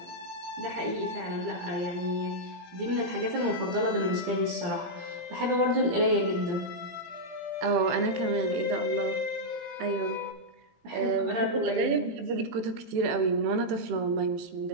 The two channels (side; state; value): left; late; 18 ms